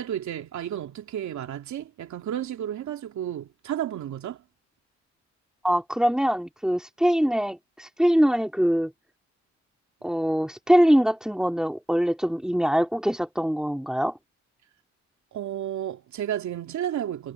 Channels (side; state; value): both; normal; correlation 0.89